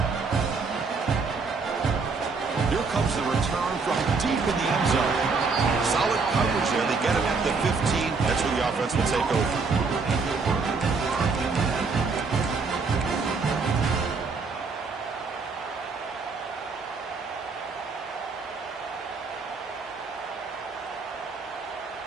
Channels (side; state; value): left; quieter; 4.5 dB